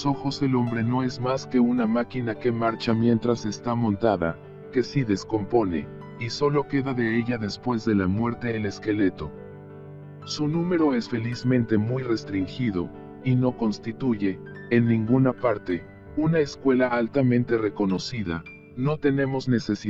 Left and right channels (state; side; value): identical; both; correlation 1.00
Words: ojos el hombre no es más que una máquina que marcha mientras está montada, que si descompone, y solo queda de ella después de la muerte el esqueleto. Su número es felizmente muy restringido, y no constituye, en ninguna parte, una escuela altamente reconocida. No tenemos